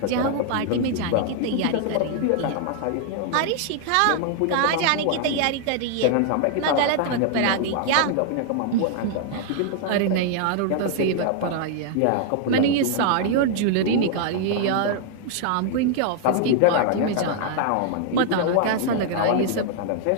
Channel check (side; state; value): both; different; correlation 0.00